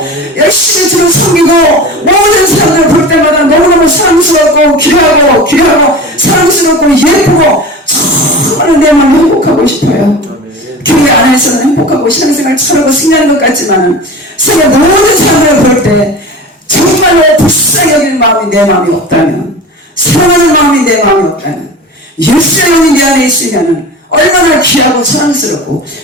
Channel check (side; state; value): both; normal; correlation 0.33